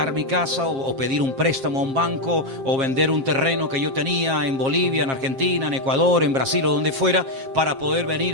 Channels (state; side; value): late; left; 7.5 ms